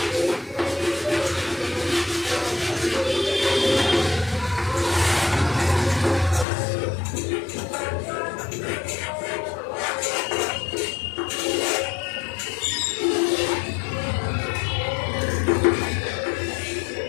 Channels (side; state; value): right; drops out; at 6.5 s